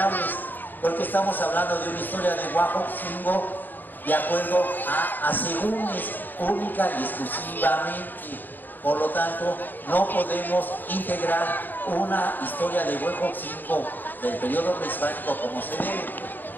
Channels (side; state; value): right; late; 0.088 ms